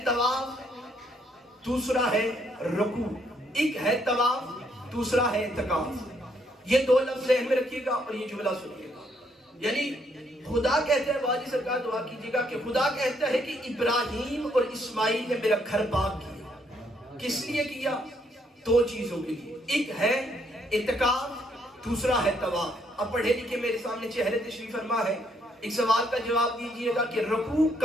طواف, دوسرا ہے رکوع. ایک ہے طواف, دوسرا ہے اعتکاف. یہ دو لفظ ذہن میں رکھیے گا اور یہ جملہ سنیے گا. یعنی خدا کہتا ہے, واجی سرکار دعا کیجیے گا کہ خدا کہتا ہے کہ ابراہیم اور اسماعیل نے میرا گھر پاک کیا. کس لیے کیا؟ دو چیزوں کے لیے. ایک ہے اعتکاف, دوسرا ہے طواف. اب پڑھے لکھے میرے سامنے چہرے تشریف فرما ہے, ایک سوال کا جواب دیجئے گا کہ رکوع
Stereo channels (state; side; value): normal; both; correlation 0.71